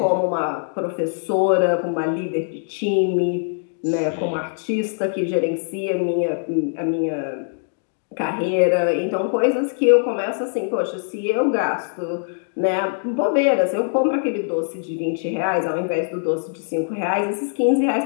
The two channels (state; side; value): silent; right; digital silence